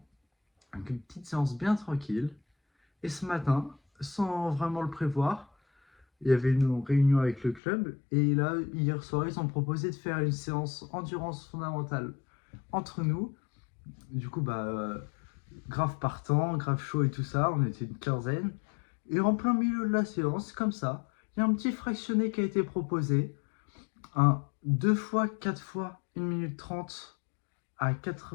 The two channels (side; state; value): right; drops out; at 7.6 s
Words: Donc une petite séance bien tranquille. Et ce matin, sans vraiment le prévoir, il y avait une réunion avec le club. Et là, hier soir, ils ont proposé de faire une séance endurance fondamentale entre nous. Du coup, grave partant, grave chaud et tout ça. On était une quinzaine. Et en plein milieu de la séance, comme ça, il y a un petit fractionné qui a été proposé. Un 2 fois, 4 fois 1 minute 30 à